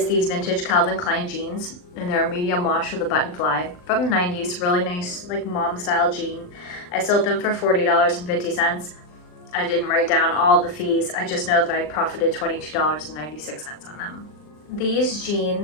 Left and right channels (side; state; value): right; late; 39 ms